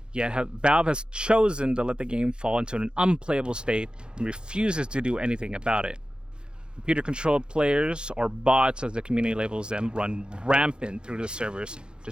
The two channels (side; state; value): left; late; 0.049 ms